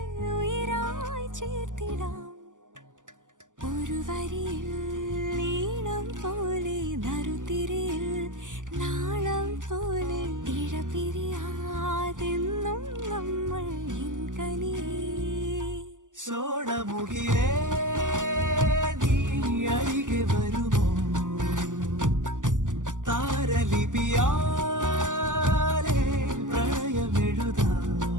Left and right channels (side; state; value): left; late; 0.87 ms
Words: ഉയരായി ചേർത്തിടാം. ഒരു വരിയിൽ ഈണം പോലെ നറുതിരിയിൽ നാളം പോലെ ഇഴപിരിയാതെന്നും നമ്മൾ സോണമുകിലേ നീ അരികെ വരുമോ? താരലിപിയാലേ പ്രണയമെഴുതാൻ